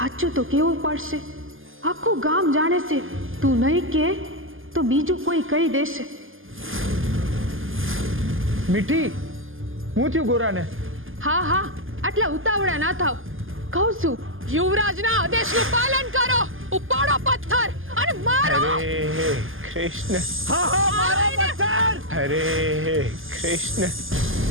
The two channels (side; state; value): left; late; 0.59 ms